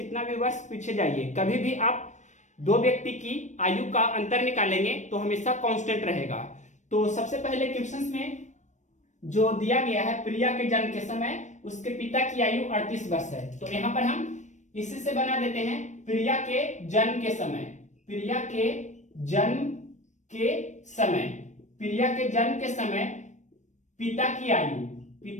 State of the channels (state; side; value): late; right; 0.35 ms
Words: भी वर्ष पीछे जाइए, कभी भी आप दो व्यक्ति की आयु का अंतर निकालेंगे तो हमेशा कांस्टेंट रहेगा। तो सबसे पहले क्वेश्चंस में जो दिया गया है प्रिया के जन्म के समय उसके पिता की आयु 38 वर्ष है। तो यहां पर हम इसी से बना देते हैं प्रिया के जन्म के समय। प्रिया के जन्म के समय, प्रिया के जन्म के समय पिता की